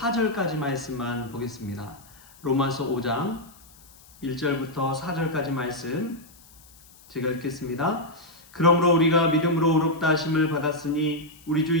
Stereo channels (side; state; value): left; noise; hiss, 25 dB below the sound